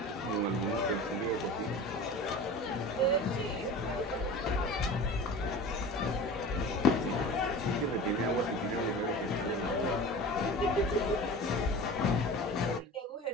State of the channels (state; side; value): normal; both; correlation 0.35